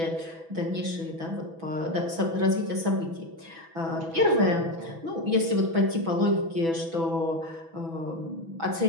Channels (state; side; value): late; left; 6.1 ms